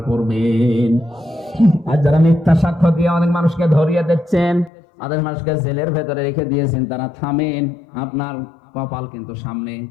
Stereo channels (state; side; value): drops out; right; at 4.7 s